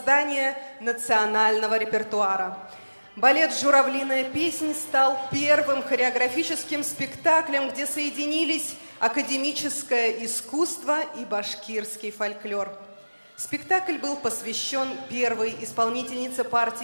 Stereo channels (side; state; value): both; inverted; correlation -1.00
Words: национального репертуара. Балет «Журавлиная песнь» стал первым хореографическим спектаклем, где соединились академическое искусство и башкирский фольклор. Спектакль был посвящен первой исполнительнице